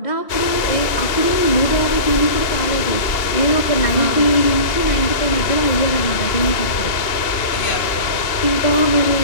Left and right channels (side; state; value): right; late; 2.8 ms